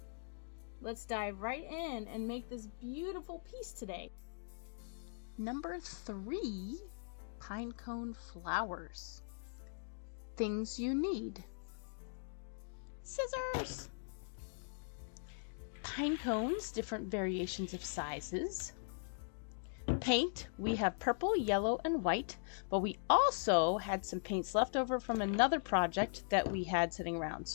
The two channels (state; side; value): silent; right; digital silence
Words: let's dive right in and make this beautiful piece today. Number 3, pinecone flowers. Things you need: scissors, pine cones, different variations of sizes, paint. We have purple, yellow, and white, but we also had some paints left over from another project that we had sitting around,